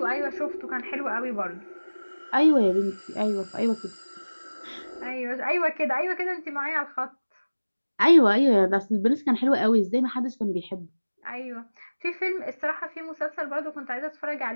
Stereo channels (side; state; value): both; inverted; correlation -1.00